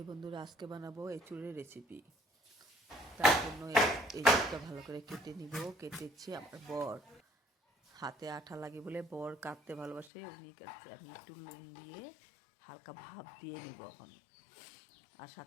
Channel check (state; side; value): drops out; right; at 10.1 s